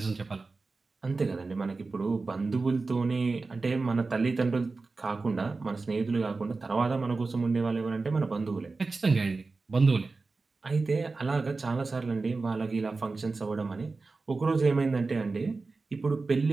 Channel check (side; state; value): left; quieter; 3.9 dB